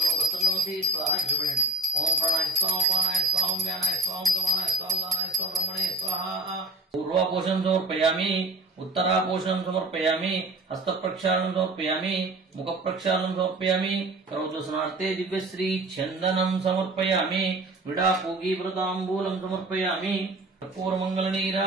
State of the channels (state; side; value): quieter; left; 3.3 dB